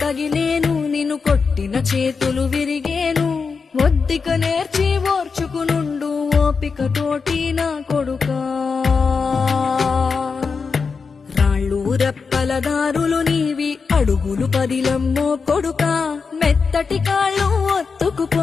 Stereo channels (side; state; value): right; quieter; 5.1 dB